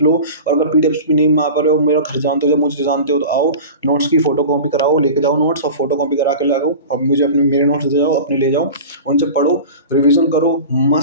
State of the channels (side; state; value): both; inverted; correlation -0.34